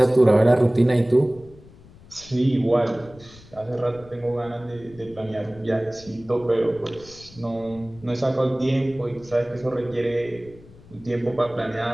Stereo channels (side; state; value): left; noise; rumble, 22 dB below the sound